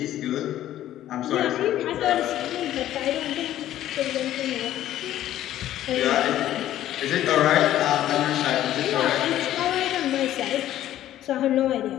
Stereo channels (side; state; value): right; quieter; 12.8 dB